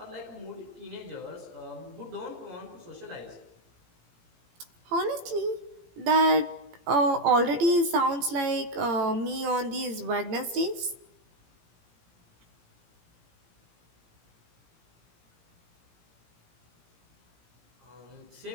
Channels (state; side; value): late; left; 17 ms